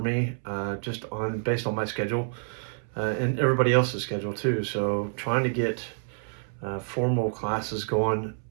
me, just on based on my schedule and everybody else's schedule too. So trying to get formal classes going,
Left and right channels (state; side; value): silent; left; 59 dB below the other